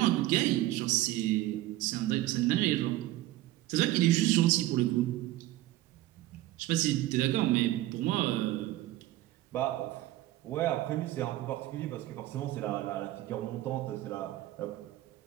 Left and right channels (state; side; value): quieter; left; 15.9 dB